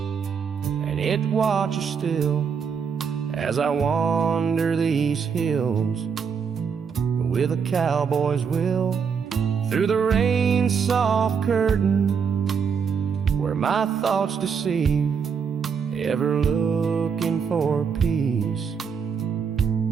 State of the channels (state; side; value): quieter; left; 6.4 dB